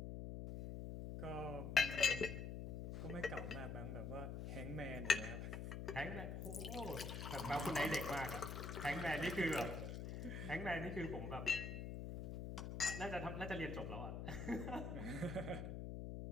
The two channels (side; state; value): left; noise; hum, 5 dB below the sound